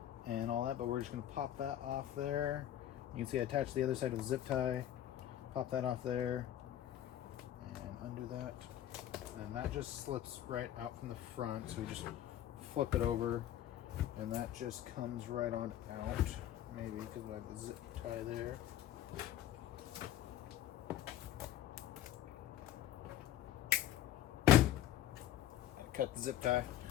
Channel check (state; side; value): quieter; right; 11.9 dB